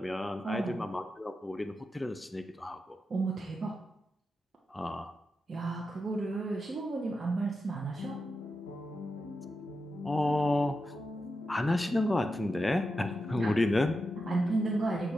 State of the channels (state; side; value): normal; both; correlation 0.88